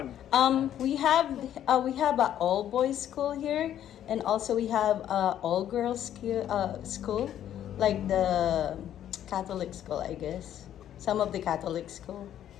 We have a all boys school here, and also we have all girls school, like the Catholic school, I guess. Some of the Catholic school.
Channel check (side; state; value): right; quieter; 10.9 dB